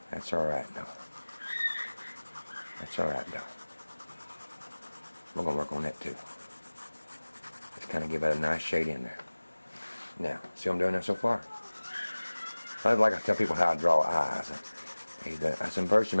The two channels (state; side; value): inverted; both; correlation -1.00